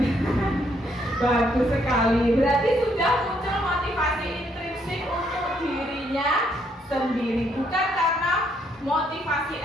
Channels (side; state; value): both; normal; correlation 0.72